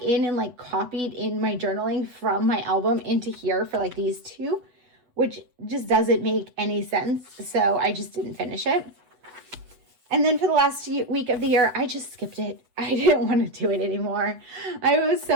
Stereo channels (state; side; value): late; left; 8.1 ms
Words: in and like copied in my journaling from my album into here for like these two, which just doesn't make any sense. So I just didn't finish it. And then for the last week of the year, I just skipped it. I didn't want to do it anymore. I was